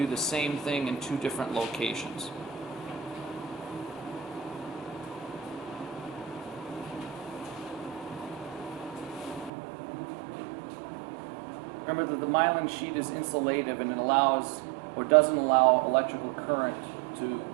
the same thing in two different locations. Remember that the myelin sheath is insulative and it allows or doesn't allow electrical current to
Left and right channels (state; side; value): drops out; left; at 9.5 s